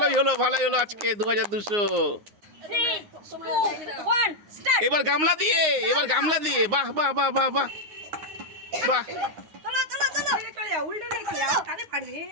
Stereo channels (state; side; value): late; left; 9.7 ms